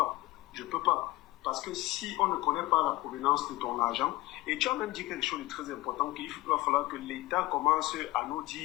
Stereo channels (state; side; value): quieter; right; 19.2 dB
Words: Je ne peux pas. Parce que si on ne connaît pas la provenance de ton argent, et tu as même dit quelque chose de très important, qu'il va falloir que l'État commence à nous